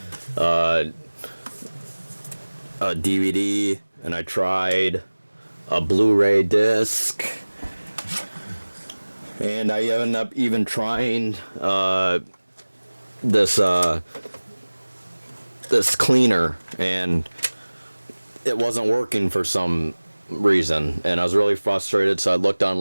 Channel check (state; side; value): inverted; both; correlation -1.00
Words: a DVD and I tried a Blu-ray disc, and I ended up even trying this cleaner, and it wasn't working for some reason, and I was really frustrated. So I looked